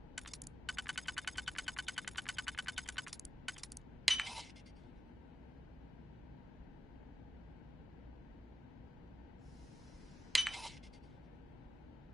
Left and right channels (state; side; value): normal; both; correlation 0.95